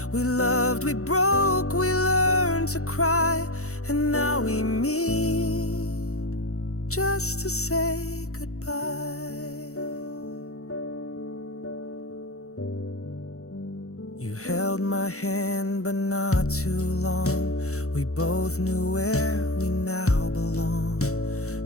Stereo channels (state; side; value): late; right; 0.64 ms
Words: We loved, we broke, we learned to cry, and now we meet just to say goodbye. You held my hand, but not too long. We both knew where we now belong.